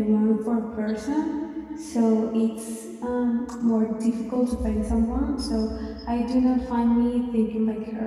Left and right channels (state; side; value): identical; both; correlation 1.00